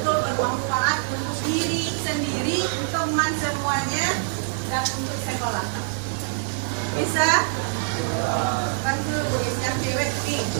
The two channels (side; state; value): left; silent; 60 dB below the other